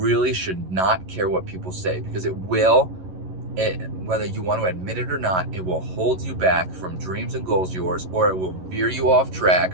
should not care what people say, because whether you want to admit it or not, it will hold you back from dreams and goals of yours, or it will veer you off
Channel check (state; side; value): late; left; 11 ms